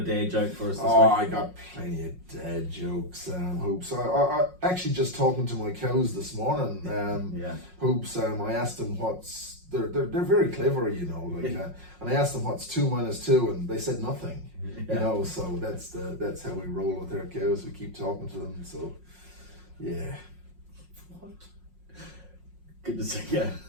dad joke for us this week? I got plenty of dad jokes, Hoops. I actually just talking to my cows this morning. Hoops. I asked them what's they're very clever, you know, and I asked them what's 2 minus 2, and they said nothing. You know, so that's how we roll with our cows. We keep talking to them. So yeah. What? Good to see you.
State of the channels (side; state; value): left; late; 5.5 ms